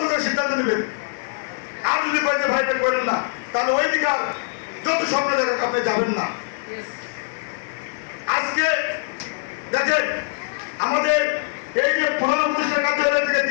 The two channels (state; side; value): silent; right; 64 dB below the other